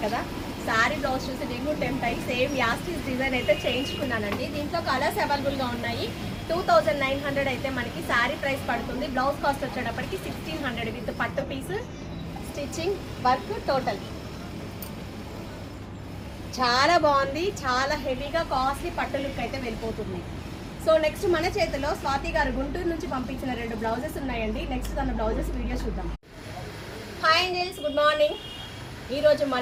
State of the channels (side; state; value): both; identical; correlation 1.00